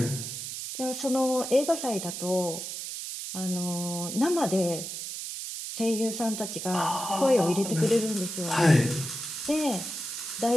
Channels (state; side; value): noise; right; hiss, 6 dB below the sound